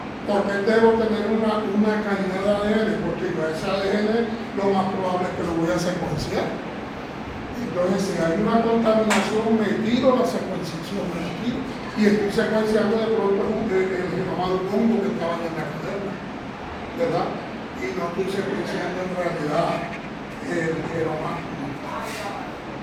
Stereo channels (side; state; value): both; identical; correlation 1.00